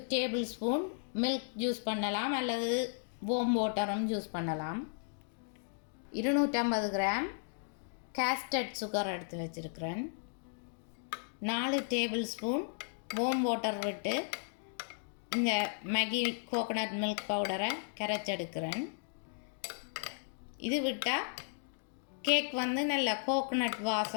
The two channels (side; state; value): right; silent; digital silence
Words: டேபிள் ஸ்பூன் மில்க் யூஸ் பண்ணலாம், அல்லது வார்ம் வாட்டரும் யூஸ் பண்ணலாம். 250 கிராம் கேஸ்டர்ட் சுகர் எடுத்து வச்சுருக்கிறேன். 4 டேபிள் ஸ்பூன் வார்ம் வாட்டர் விட்டு இந்த மேகி கோகோனட் மில்க் பவுடரை கரைச்செடுக்கிறேன். இது விட்டால் கேக் நல்ல கோகோனட்